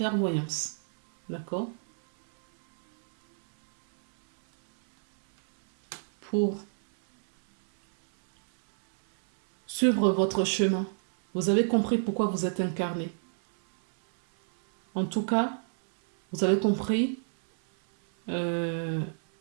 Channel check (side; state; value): left; silent; 60 dB below the other